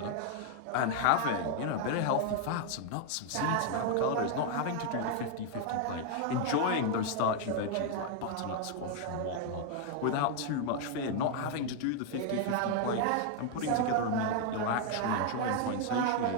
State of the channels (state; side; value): different; both; correlation 0.00